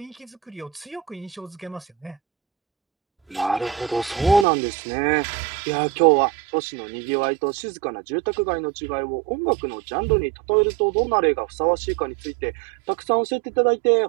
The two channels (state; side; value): drops out; left; at 4.5 s